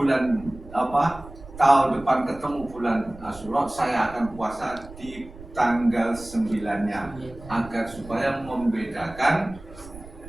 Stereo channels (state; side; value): noise; right; rumble, 17 dB below the sound